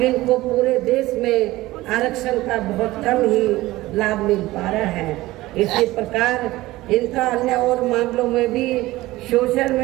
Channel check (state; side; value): quieter; left; 18.0 dB